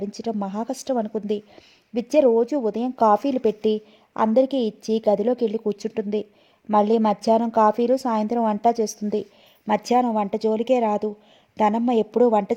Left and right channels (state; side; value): identical; both; correlation 1.00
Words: మహా కష్టం అనుకుంది. విద్య రోజు ఉదయం కాఫీలు పెట్టి అందరికీ ఇచ్చి గదిలోకి వెళ్ళి కూర్చుంటుంది. మళ్ళీ మధ్యాహ్నం కాఫీలు, సాయంత్రం వంట చేస్తుంది. మధ్యాహ్నం వంట జోలికే రాదు. ధనమ్మ ఎప్పుడూ వంట